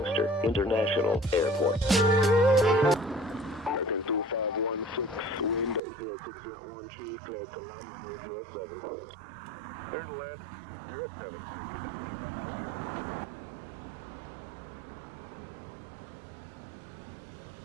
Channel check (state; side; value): drops out; left; at 5.8 s